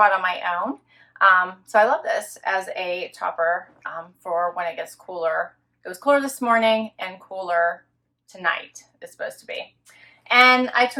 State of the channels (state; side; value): identical; both; correlation 1.00